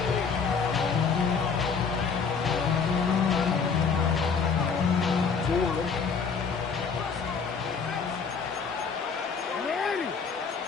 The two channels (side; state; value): right; quieter; 5.6 dB